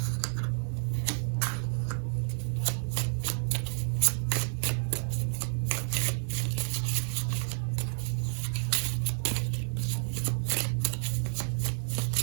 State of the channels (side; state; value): left; silent; 58 dB below the other